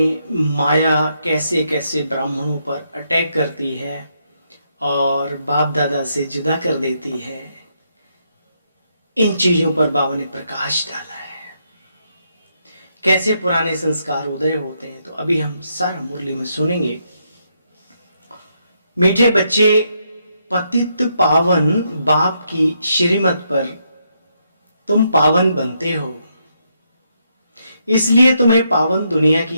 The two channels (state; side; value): inverted; both; correlation -0.78